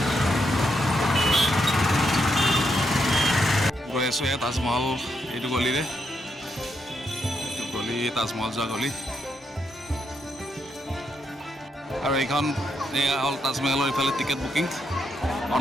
গৈ আছোঁ এয়া তাজমহল এইটো গলিৰে, এইটো গলি তাজমহল যোৱা গলি। আৰু এইখন এয়া হ'ল তাজমহলৰ ইফালে টিকেট বুকিং,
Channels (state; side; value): normal; both; correlation 0.80